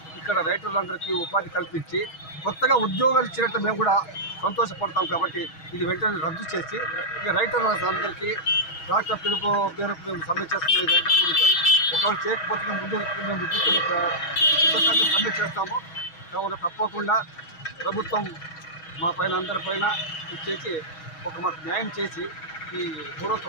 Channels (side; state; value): right; late; 6.3 ms